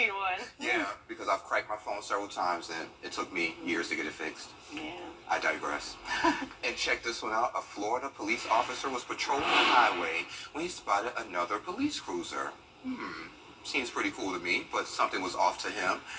one. Yeah, because I've cracked my phone several times and it took me years to get it fixed. Yeah. I digress. And check this one out. A Florida police officer was patrolling the highway when he spotted another police cruiser. Seems pretty cool to me, but something was off to him.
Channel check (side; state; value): both; identical; correlation 1.00